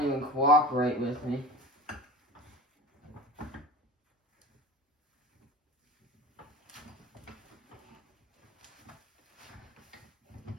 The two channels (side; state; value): both; normal; correlation 0.34